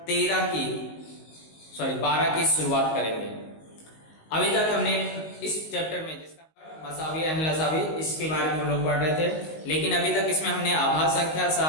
12 की शुरुआत करेंगे। अभी तक हमने इस चैप्टर में जिसका मसावी एंड लसावी इसके बारे में हम लोग पढ़ रहे थे, लेकिन अभी तक इसमें हमने आभाज्य संख्या,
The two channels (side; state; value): right; late; 19 ms